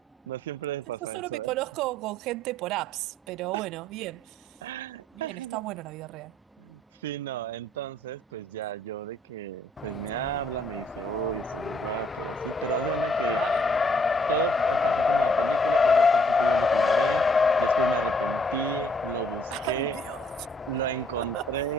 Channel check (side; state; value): both; normal; correlation 0.64